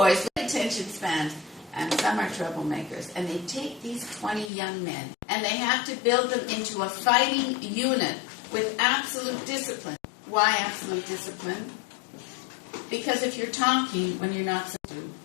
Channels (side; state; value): right; drops out; at 4.5 s